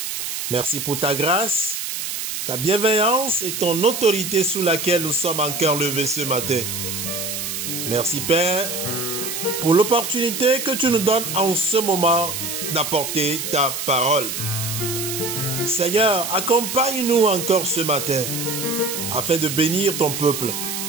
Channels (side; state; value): right; noise; hiss, 4 dB below the sound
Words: Merci pour ta grâce, ta bienveillance et ton autorité sous laquelle nous sommes encore levés ce matin. Merci Père pour l'opportunité que tu nous donnes en ce moment d'apporter ta parole. Seigneur, accompagne-nous encore ce matin afin de bénir ton peuple